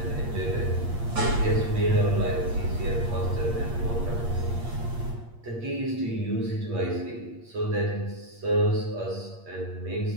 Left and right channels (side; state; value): left; late; 8.6 ms